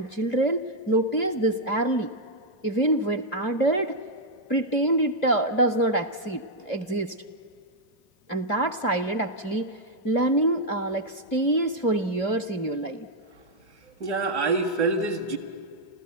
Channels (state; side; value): late; right; 2.7 ms